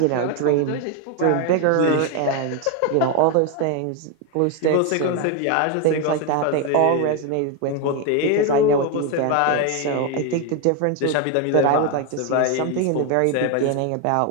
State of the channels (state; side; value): different; both; correlation 0.02